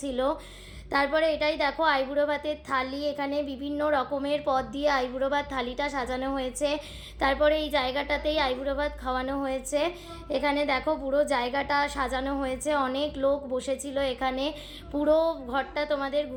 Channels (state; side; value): identical; both; correlation 1.00